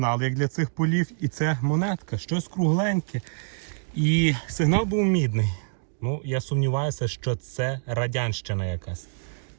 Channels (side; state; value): left; silent; digital silence